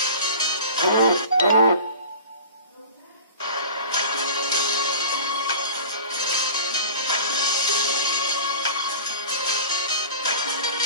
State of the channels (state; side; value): inverted; both; correlation -0.38